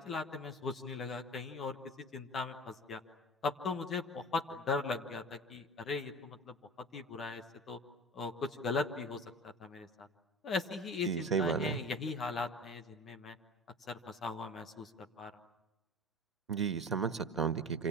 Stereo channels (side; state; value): both; normal; correlation 0.35